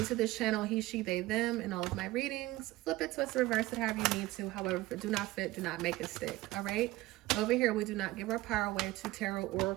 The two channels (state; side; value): quieter; left; 18.2 dB